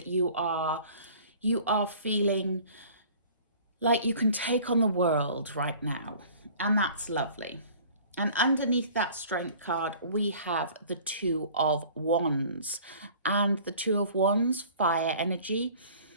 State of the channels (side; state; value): both; inverted; correlation -0.48